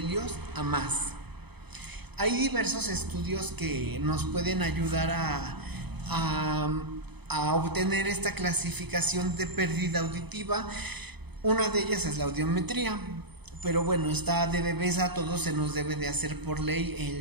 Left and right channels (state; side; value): late; left; 0.98 ms